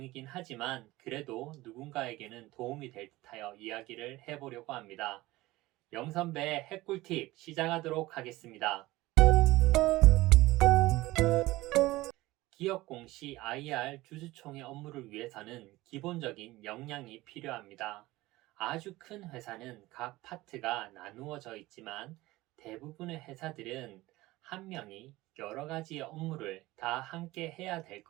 하지만 그래도 누군가에게는 도움이 될 듯하여 이야기를 해보려고 합니다. 영선배의 핵꿀팁 시작하도록 하겠습니다. 기업 공시 IR 주주총회 업무를 위해서는 기본적인 역량이 필요합니다. 아주 큰 회사는 각 파트가 나누어져 있지만 대부분의 회사들은 한 명이 여러 가지의 업무를 다 함께 해야 될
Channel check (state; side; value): quieter; left; 18.8 dB